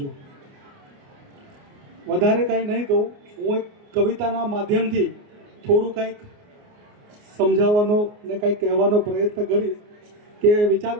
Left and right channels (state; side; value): late; left; 29 ms